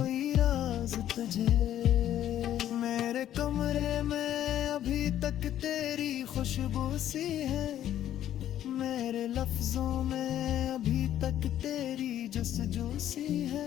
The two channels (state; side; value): quieter; right; 11.6 dB